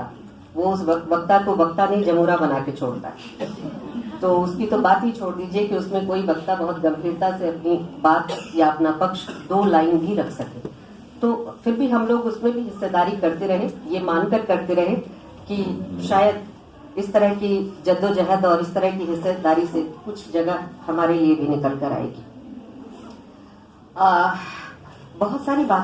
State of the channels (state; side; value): identical; both; correlation 1.00